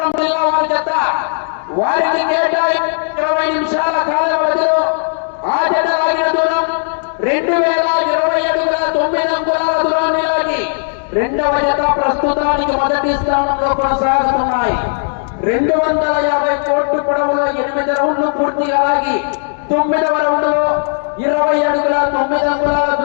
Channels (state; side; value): silent; right; digital silence